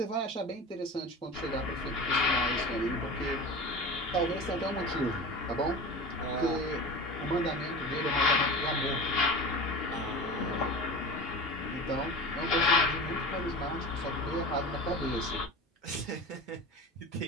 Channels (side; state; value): both; normal; correlation 0.32